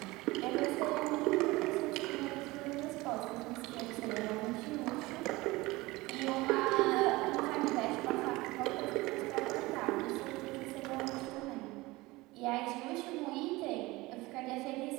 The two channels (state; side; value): quieter; left; 21.0 dB